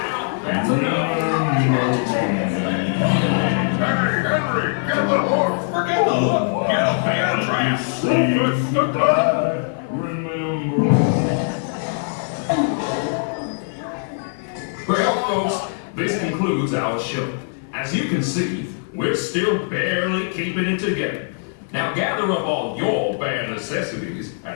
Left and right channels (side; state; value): right; silent; 60 dB below the other